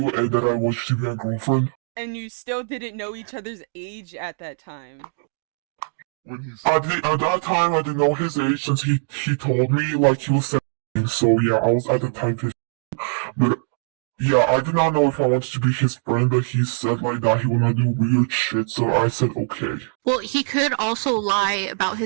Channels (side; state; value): left; silent; digital silence